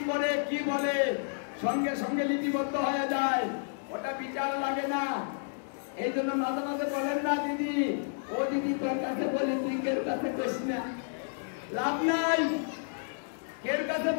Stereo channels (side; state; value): right; silent; digital silence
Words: করে, কি বলে, সঙ্গে সঙ্গে লিপিবদ্ধ হয়ে যায়, ওটা বিচার লাগে না। এই জন্য মাঝে মাঝে বলেন না, দিদি ও দিদি তোর কাছে বলি, তুই কের কাছে কইস না, লাভ নাই। কের কাছে